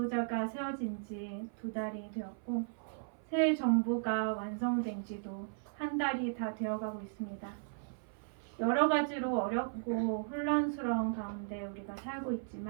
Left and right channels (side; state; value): left; silent; 54 dB below the other